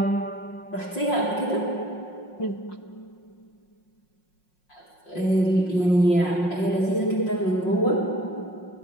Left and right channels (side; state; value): right; late; 5.5 ms